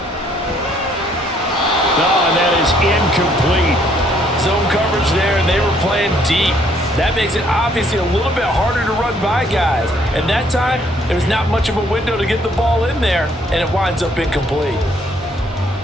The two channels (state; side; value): normal; both; correlation 0.66